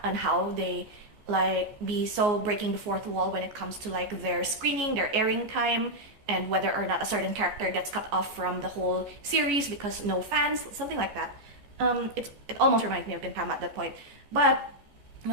and how they like be so breaking the fourth wall when it comes to like their screening, their airing time, and whether or not a certain character gets cut off from the whole series because no fans, something like that. It almost reminds me of Gintama at that point. But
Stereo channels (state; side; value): late; left; 14 ms